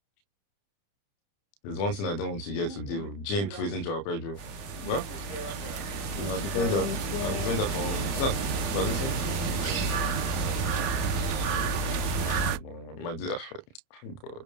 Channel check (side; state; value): right; late; 30 ms